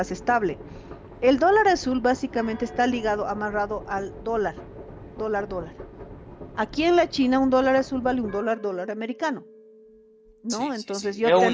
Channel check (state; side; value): identical; both; correlation 1.00